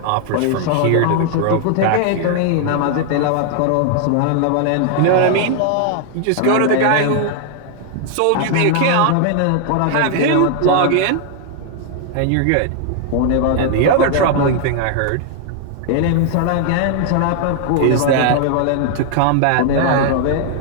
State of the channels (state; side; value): different; both; correlation 0.00